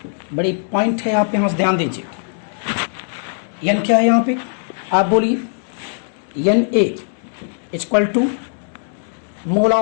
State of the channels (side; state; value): right; silent; 66 dB below the other